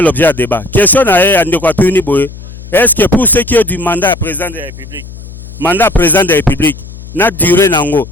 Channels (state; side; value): noise; left; hum, 15 dB below the sound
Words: l'objet de débat. Question à Ndekatuni Boye. Est-ce que pour ce qui est du mandat président de la République, n'a duré nango,